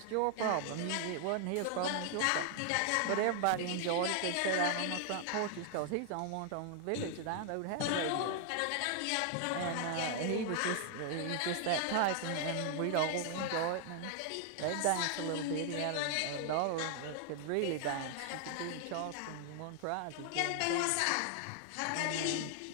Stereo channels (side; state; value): both; different; correlation 0.00